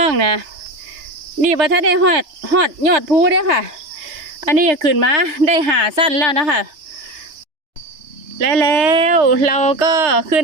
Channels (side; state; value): left; late; 3.3 ms